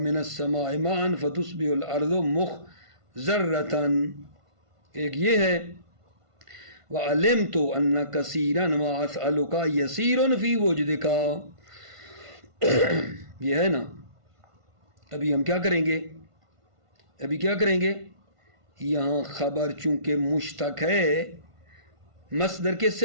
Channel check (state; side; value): late; left; 1.5 ms